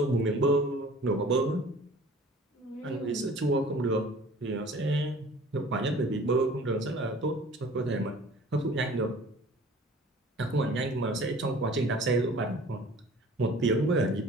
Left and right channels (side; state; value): both; normal; correlation 0.48